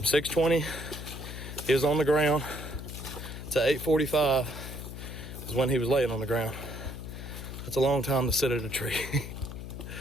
6:20, he was on the ground, to 8:45 is when he was laying on the ground. That's a long time to sit at a tree.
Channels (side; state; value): left; noise; hum, 9 dB below the sound